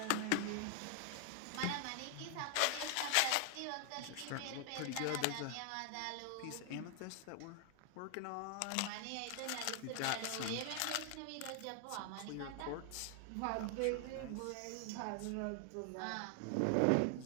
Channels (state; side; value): different; both; correlation 0.00